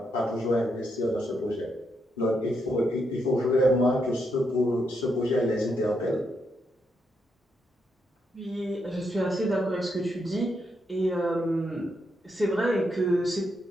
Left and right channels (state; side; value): normal; both; correlation 0.80